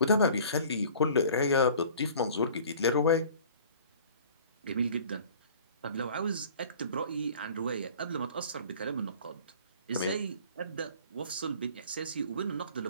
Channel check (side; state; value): both; inverted; correlation -0.47